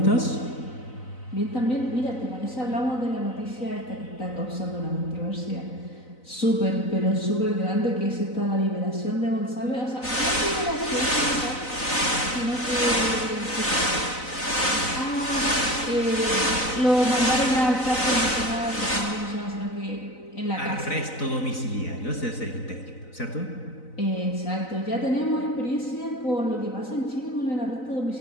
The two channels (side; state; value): right; late; 4.0 ms